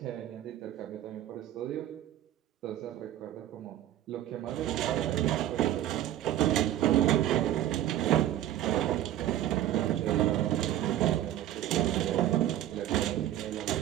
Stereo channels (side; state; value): left; quieter; 12.7 dB